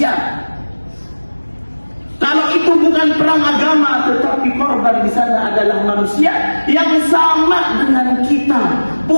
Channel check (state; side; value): inverted; both; correlation -1.00